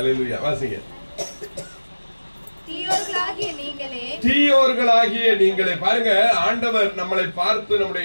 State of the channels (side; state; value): both; inverted; correlation -1.00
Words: வாசிங்க. தீயோர்களாகிய நீங்களே. பாருங்க, ஆண்டவர் நம்மளை பார்த்து, நம்முடைய